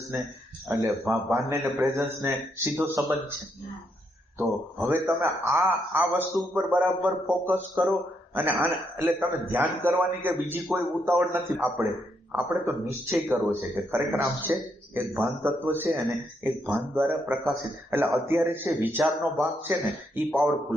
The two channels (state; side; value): normal; both; correlation 0.77